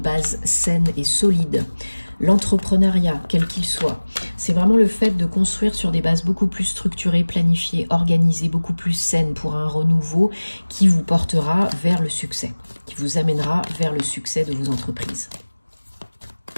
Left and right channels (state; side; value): inverted; both; correlation -1.00